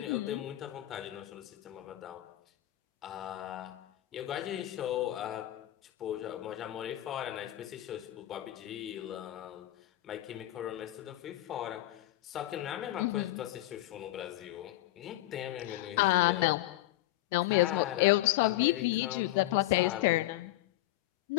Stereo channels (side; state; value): right; quieter; 16.6 dB